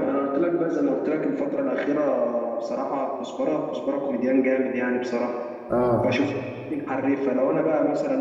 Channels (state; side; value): identical; both; correlation 1.00